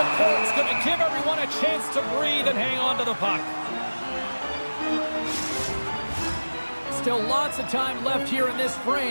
Bruins going to give everyone a chance to breathe and hang on to the puck. Still lots of time left here in this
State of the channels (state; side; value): inverted; both; correlation -1.00